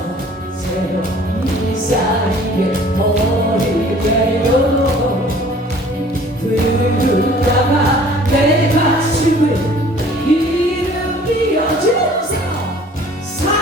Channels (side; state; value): both; normal; correlation 0.51